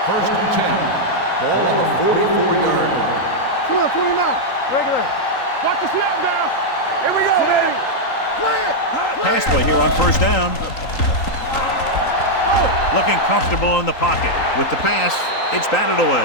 1st and 10. Ball on the 44-yard line. 29. Regular. Watch the snap down. Here we go. Play it. Pass play here on 1st down. Looking comfortable in the pocket. With the pass, it's batted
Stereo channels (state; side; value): late; right; 3.9 ms